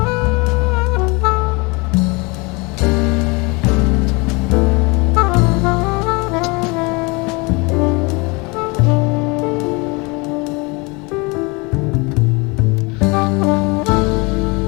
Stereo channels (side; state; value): right; quieter; 27.6 dB